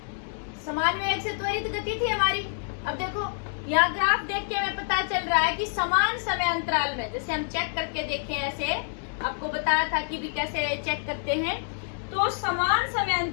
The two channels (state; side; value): silent; right; 60 dB below the other